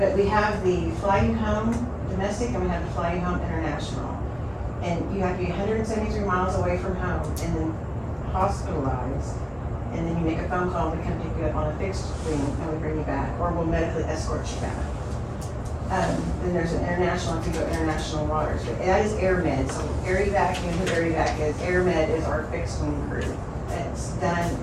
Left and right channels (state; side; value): identical; both; correlation 1.00